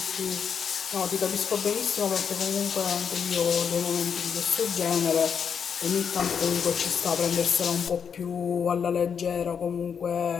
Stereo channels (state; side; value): quieter; right; 7.0 dB